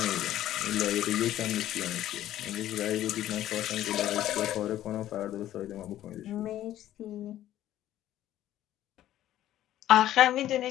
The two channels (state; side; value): quieter; right; 13.0 dB